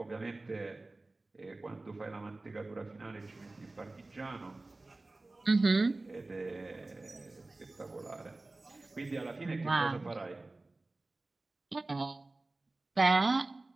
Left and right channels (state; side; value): quieter; left; 3.1 dB